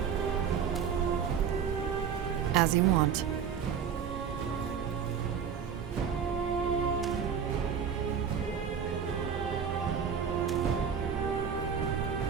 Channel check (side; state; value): left; quieter; 7.4 dB